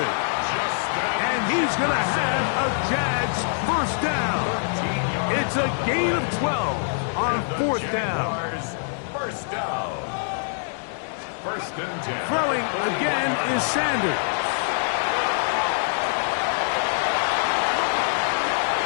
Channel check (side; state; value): right; silent; digital silence